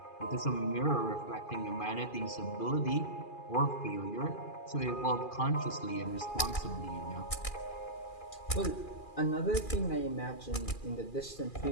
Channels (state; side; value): late; right; 2.4 ms